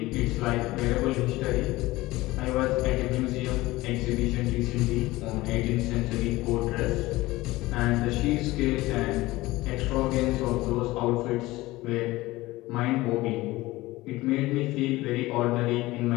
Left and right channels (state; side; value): quieter; right; 19.1 dB